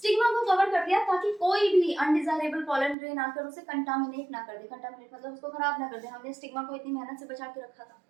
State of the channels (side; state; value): left; drops out; at 3.0 s